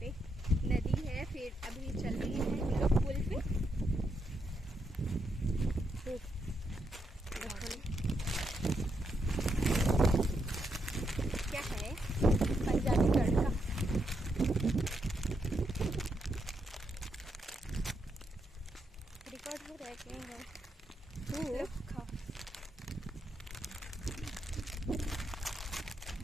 पे नदी है, फिर अभी चल रही है हम लोग पुल पे। क्या है पंजाबी तड़का। रिकॉर्ड हो रहा है कहीं है तो खाओ।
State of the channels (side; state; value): both; normal; correlation 0.80